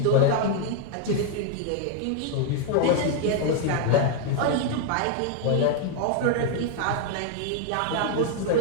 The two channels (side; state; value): both; different; correlation 0.00